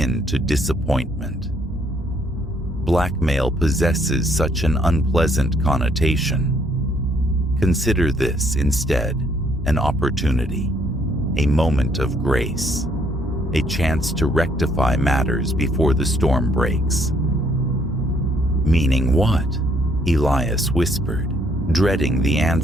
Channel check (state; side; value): normal; both; correlation 0.68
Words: to disappointment. Blackmail possesses such an unpleasant connotation. Consider this instead an opportunity, a moment of grace, a chance to rectify matters before the storm breaks. Meaning what? Elias whispered, dreading the